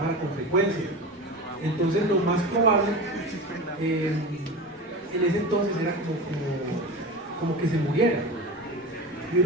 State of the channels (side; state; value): both; normal; correlation 0.29